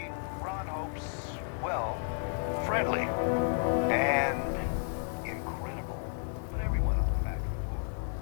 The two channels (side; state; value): right; silent; 56 dB below the other